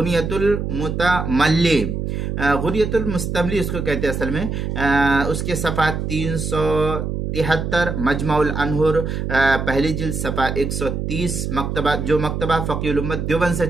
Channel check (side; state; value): right; noise; hum, 3 dB below the sound